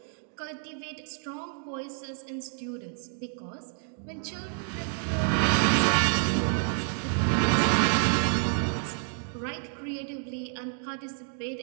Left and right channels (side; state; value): left; silent; 59 dB below the other